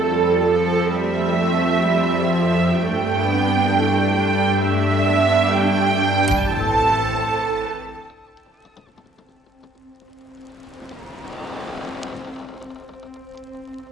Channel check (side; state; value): both; normal; correlation 0.66